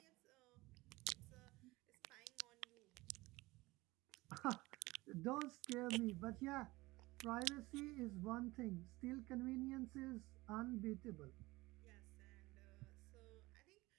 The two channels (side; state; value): left; quieter; 20.8 dB